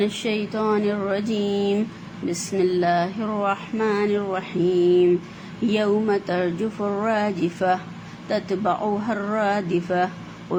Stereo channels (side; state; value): both; identical; correlation 1.00